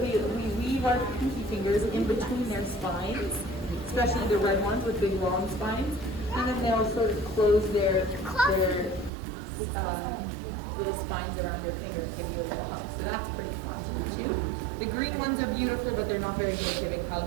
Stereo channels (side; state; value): left; drops out; at 9.1 s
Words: our pinky fingers in between their spines, especially the red ones with big long spines, and then they'll sort of close their little spines around your finger and give you a little hug. So that's pretty fun to do too. The green ones are beautiful, but they're not very good at giving